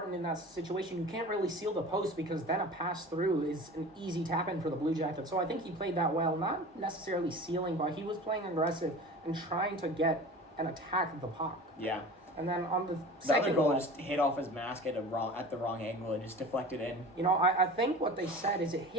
in that situation, you can't really seal the post because then a pass through is an easy tap-in for the Blue Jackets. So I think he played that well, not necessarily sealing, but he was playing aggressive and trying to get an attack of the puck. Yeah. And then on the The second other goal just hit off his mask at the wrong angle and just deflected in. you know, I think what they said is it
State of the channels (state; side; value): normal; both; correlation 0.37